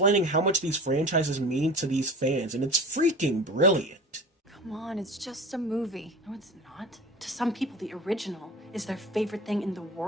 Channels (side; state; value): both; normal; correlation 0.36